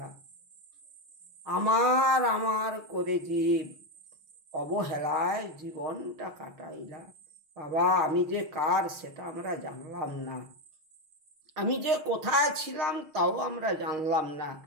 আমার আমার করে জীব অবহেলায় জীবনটা কাটাইলা। বাবা আমি যে কার সেটা আমরা জানলাম না, আমি যে কোথায় ছিলাম তাও আমরা জানলাম না।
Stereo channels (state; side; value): late; left; 6.4 ms